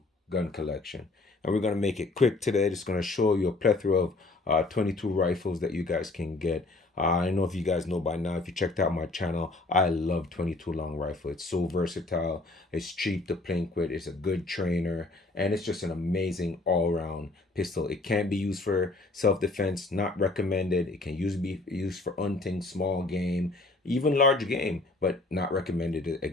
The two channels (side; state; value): right; quieter; 3.2 dB